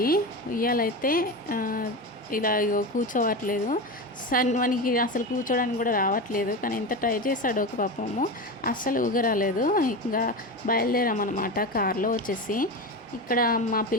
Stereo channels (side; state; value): both; normal; correlation 0.22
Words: ఉయ్యాలైతే ఇలా కూర్చోవట్లేదు. మనకి అసలు కూర్చోడానికి కూడా రావట్లేదు. కానీ ఎంత ట్రై చేశాడో ఒక పాపము, అస్సలు ఊగరాలేదు. ఇంకా బయలుదేరామన్నమాట కార్లో వచ్చేసి. ఇక్కడ మా